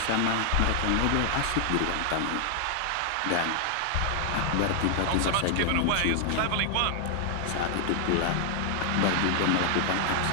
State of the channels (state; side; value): different; both; correlation 0.00